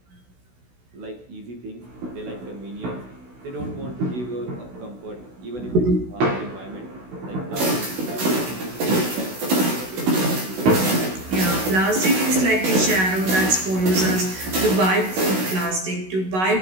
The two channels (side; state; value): left; late; 16 ms